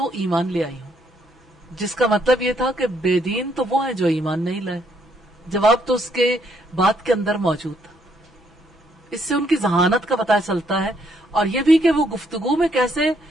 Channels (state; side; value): normal; both; correlation 0.71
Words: ایمان لے آئی ہوں، جس کا مطلب یہ تھا کہ بے دین تو وہ ہیں جو ایمان نہیں لائے. جواب تو اس کے بات کے اندر موجود تھا. اس سے ان کی ذہانت کا پتہ چلتا ہے، اور یہ بھی کہ وہ گفتگو میں کیسے